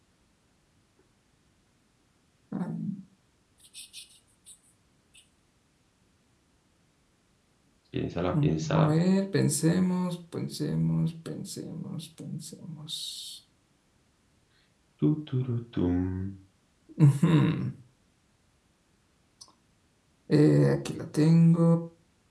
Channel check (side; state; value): both; identical; correlation 1.00